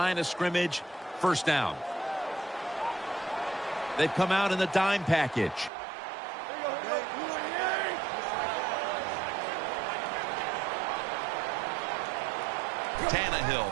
of scrimmage. First down. They've come out in the dime package.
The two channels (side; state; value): left; drops out; at 5.7 s